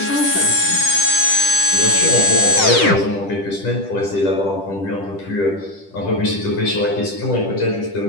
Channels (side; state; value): right; late; 10 ms